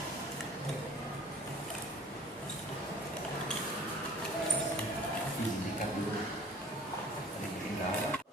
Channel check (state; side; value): normal; both; correlation 0.49